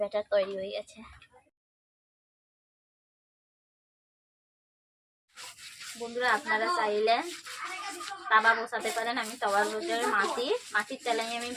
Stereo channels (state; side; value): identical; both; correlation 1.00